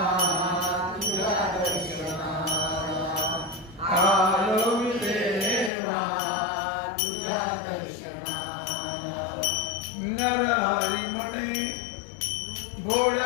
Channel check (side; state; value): right; drops out; at 5.7 s